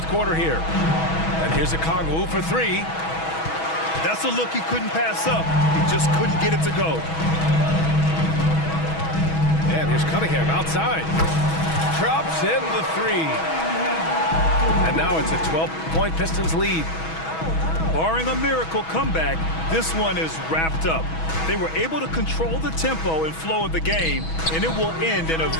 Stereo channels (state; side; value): late; right; 6.2 ms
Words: quarter here. And here's Okongwu for 3. That's a look he couldn't pass up. He just couldn't get it to go. And here's Cunningham outside. Drops in the 3. And now it's a 12-point Pistons lead. Barring a miracle comeback, this one is wrapped up. They were able to control the tempo and flow of the game, and it will end in a